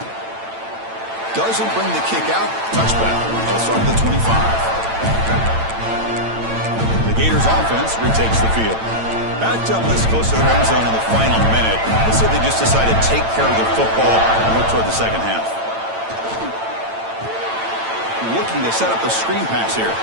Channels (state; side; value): late; left; 8.9 ms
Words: Doesn't bring the kick out. Touchback. They'll start at the 25. The Gators offense retakes the field. Backed up this close to the end zone in the final minute. Let's say they just decided to take care of the football and look toward the second half. Looking to set up a screen pass here.